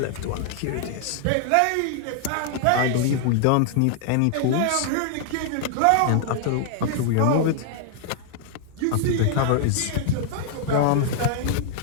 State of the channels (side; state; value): both; different; correlation -0.01